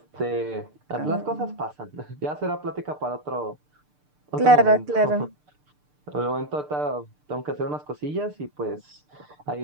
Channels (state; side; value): late; left; 6.7 ms